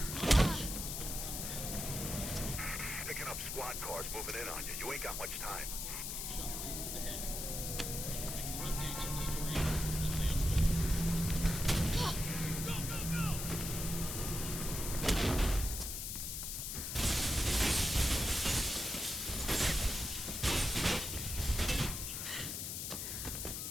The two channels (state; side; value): noise; left; hiss, 4 dB below the sound